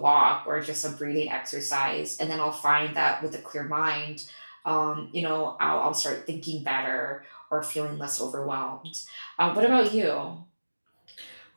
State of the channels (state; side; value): inverted; both; correlation -1.00